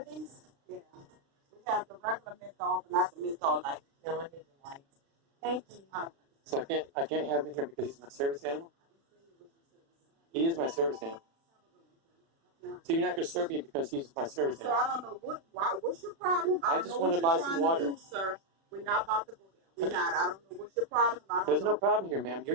these? Yeah. We have the regular menthol, but not the menthol light. No, I need the lights. Thank you. So I can't have him in here because he's my service animal? He is my service animal. So you're not going to serve me because he's my service So animal? I don't know what's your problem. I don't just know want what to buy you're some trying water. to do, sir. We're not about to go there. We're not. I don't know what's your problem. I don't There's know. no problem here, ma'am.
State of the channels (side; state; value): left; late; 36 ms